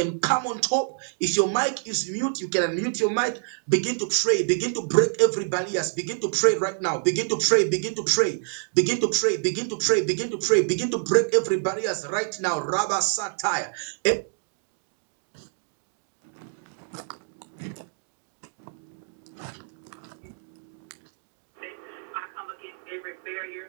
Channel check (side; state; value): left; silent; 61 dB below the other